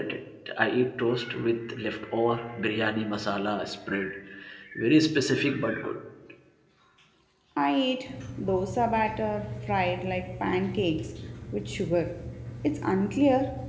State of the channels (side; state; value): both; identical; correlation 1.00